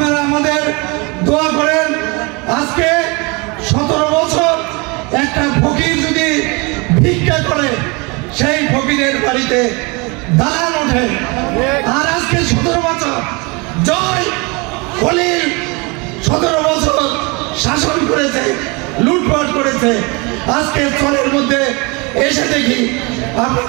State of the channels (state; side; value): quieter; left; 28.4 dB